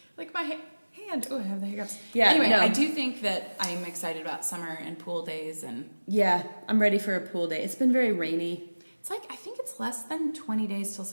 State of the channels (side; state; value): both; inverted; correlation -1.00